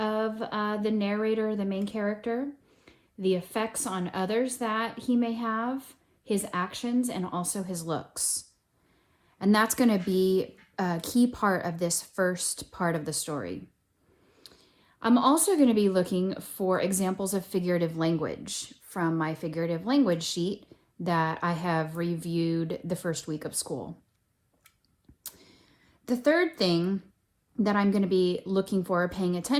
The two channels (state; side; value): identical; both; correlation 1.00